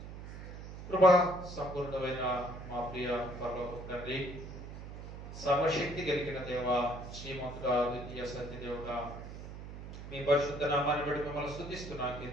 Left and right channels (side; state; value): right; noise; hum, 11 dB below the sound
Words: కృపా సంపూర్ణమైన మా ప్రియ పరలోక తండ్రి, సర్వశక్తి కలిగిన దేవ, శ్రీమంతుడా, ద్వితీయ సత్యదేవుడా, మీ పరిశుద్ధ నామాన్ని బట్టి మిమ్మల్ని స్తుతిస్తున్నా,